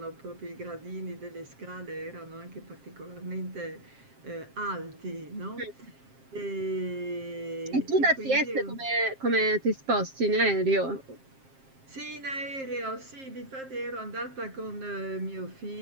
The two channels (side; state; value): left; late; 7.5 ms